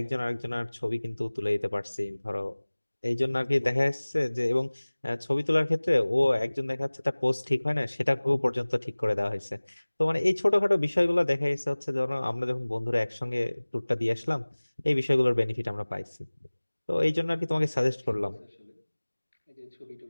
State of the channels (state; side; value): inverted; both; correlation -1.00